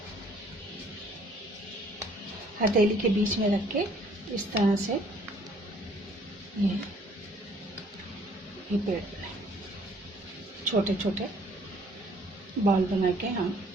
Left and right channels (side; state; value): both; normal; correlation 0.60